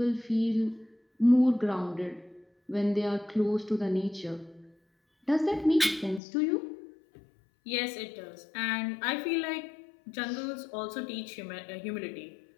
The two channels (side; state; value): right; drops out; at 6.2 s